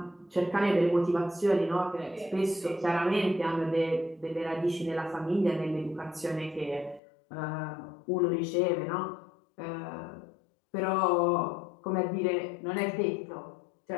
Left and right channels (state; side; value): drops out; right; at 7.0 s